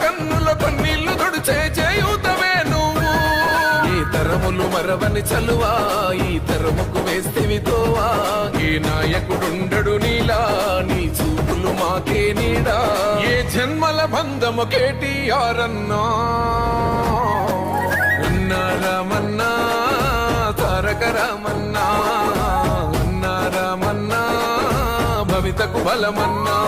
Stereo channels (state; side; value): identical; both; correlation 1.00